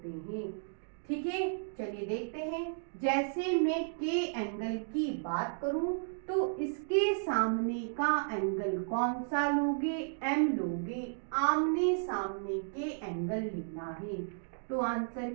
हैं। ठीक है, चलिए देखते हैं। जैसे मैं के एंगल की बात करूं तो इसके सामने का एंगल कौन सा लोगे, M लोगे। आमने सामने के एंगल लेना है। तो आंसर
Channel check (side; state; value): left; silent; digital silence